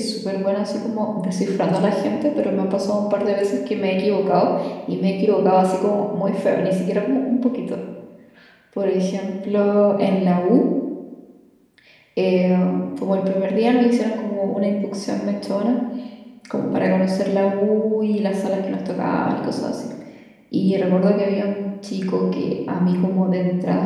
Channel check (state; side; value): identical; both; correlation 1.00